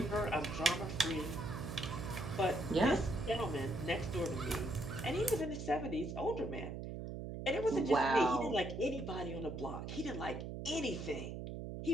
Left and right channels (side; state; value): right; noise; hum, 6 dB below the sound